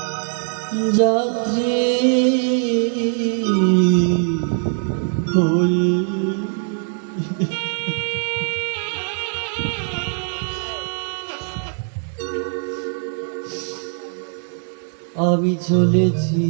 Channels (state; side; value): silent; left; 62 dB below the other